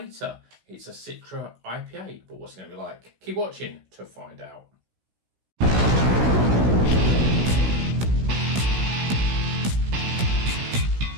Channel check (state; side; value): late; left; 16 ms